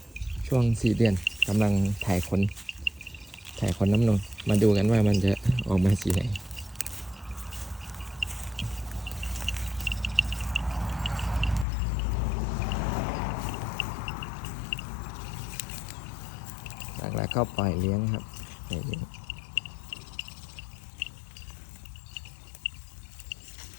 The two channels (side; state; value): right; drops out; at 11.7 s